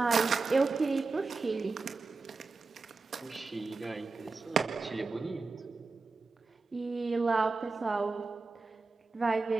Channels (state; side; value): quieter; left; 4.0 dB